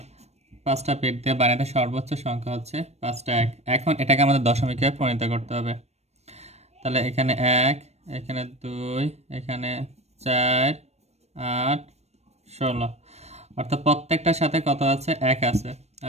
5টা বিট দিয়ে বাইনারিতে সর্বোচ্চ সংখ্যা হচ্ছে 5টা 1। এখন এটাকে আমাদের দশমিকে পরিণত করতে হবে। তাহলে এখানে 1, এখানে 2, এখানে 4 8 16, অর্থাৎ প্রত্যেকটার সাথে কত আছে? 1 আছে।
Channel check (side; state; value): left; late; 0.31 ms